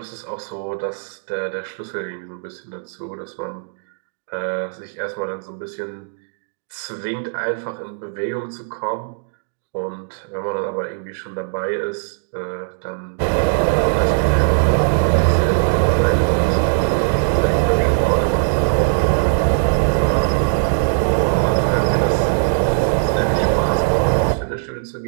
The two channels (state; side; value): silent; left; digital silence